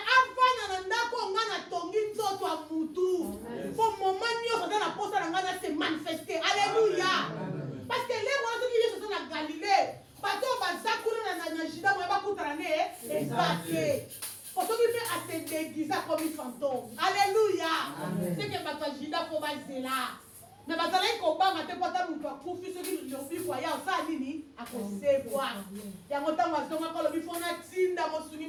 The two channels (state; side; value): identical; both; correlation 1.00